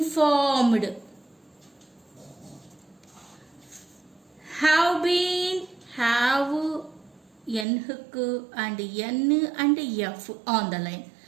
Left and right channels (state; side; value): drops out; left; at 7.7 s